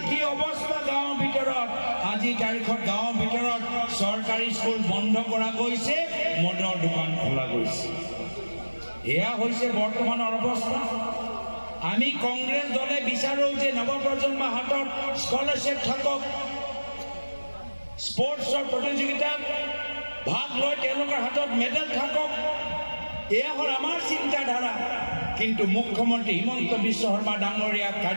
কি অৱস্থা গাঁৱৰ ভিতৰত? আজি তাৰিখত গাঁৱৰ ভিতৰত চৰকাৰী স্কুল বন্ধ কৰা গৈছে, মদৰ দোকান খোলা গৈছে। এয়া হৈছে বৰ্তমানৰ অৱস্থা। আমি কংগ্ৰেছ দলে বিচাৰোঁ যে নৱপ্ৰজন্মৰ হাতত স্কলাৰশ্বিপ থাকক, স্পৰ্টছৰ প্ৰতিযোগিতাত ভাগ লৈ তেওঁলোকৰ হাতত মেডেল থাকক। এয়া হ'ল আমাৰ চিন্তাধাৰা। কিন্তু মুখ্যমন্ত্ৰী হিমন্ত বিশ্ব শৰ্মা ডাঙৰীয়া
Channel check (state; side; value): inverted; both; correlation -1.00